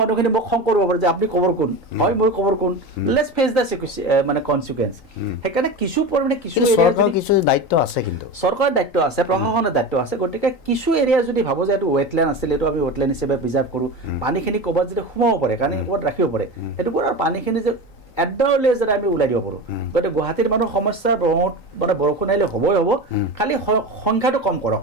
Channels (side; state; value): right; late; 3.9 ms